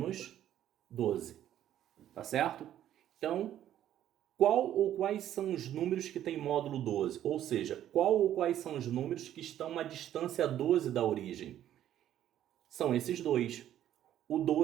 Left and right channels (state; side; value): quieter; left; 11.6 dB